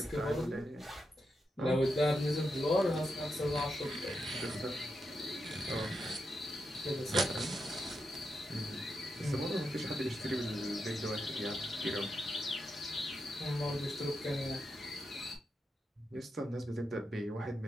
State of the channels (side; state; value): both; normal; correlation 0.85